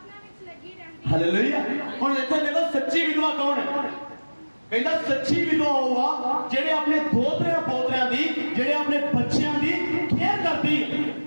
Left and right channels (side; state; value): both; inverted; correlation -1.00